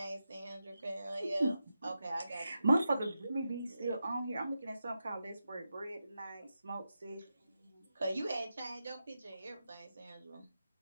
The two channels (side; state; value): both; inverted; correlation -0.89